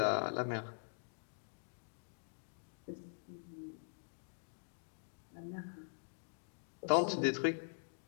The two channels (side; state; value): right; silent; digital silence